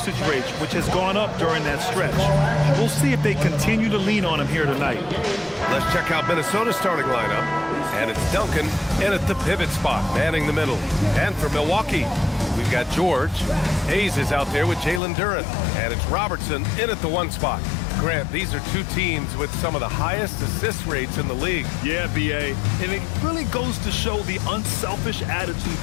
rate, which has gone up during that stretch. We'll see if they continue to lean on him here tonight. Let's check out Minnesota's starting lineup. And it's Duncan in at the pivot spot, manning the middle. And for Milwaukee, we've got George. Hayes is out there with Jalen Duren. And it's Robertson in at the 1 spot. Grant, these are 2 teams with some of the highest assist rates in the league. Yeah, B.A. And it really goes to show the unselfish attitude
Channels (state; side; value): drops out; right; at 15.0 s